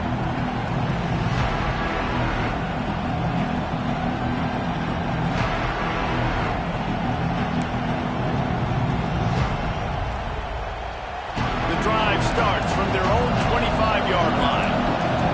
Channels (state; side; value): identical; both; correlation 1.00